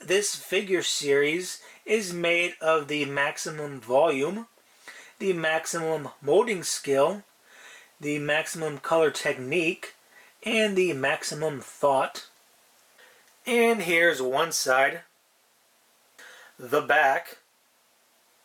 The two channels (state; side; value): identical; both; correlation 1.00